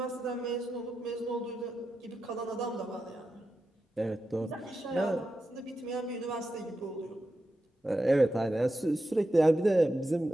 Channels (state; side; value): normal; both; correlation 0.89